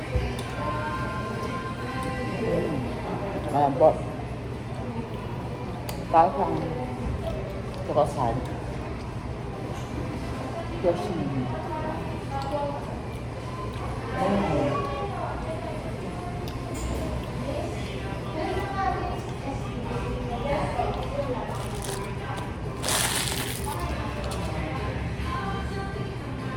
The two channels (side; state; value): both; identical; correlation 1.00